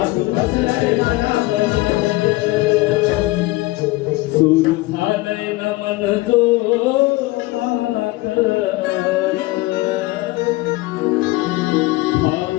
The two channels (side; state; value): right; quieter; 20.1 dB